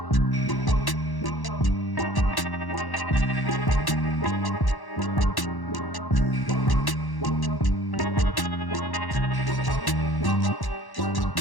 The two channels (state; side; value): late; right; 1.1 ms